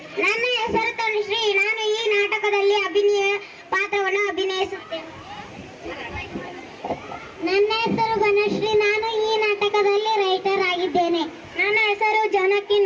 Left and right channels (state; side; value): identical; both; correlation 1.00